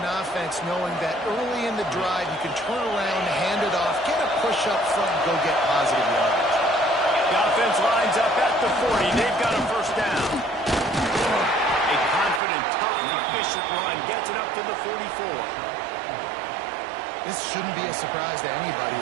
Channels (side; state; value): left; drops out; at 12.4 s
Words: offense knowing that early in the drive you can turn around, hand it off, get a push up front, and go get positive yardage. The offense lines up at the 40. They've got a 1st down. A confident, tough, efficient run gets it up to the 44. This shouldn't be a surprise to anybody.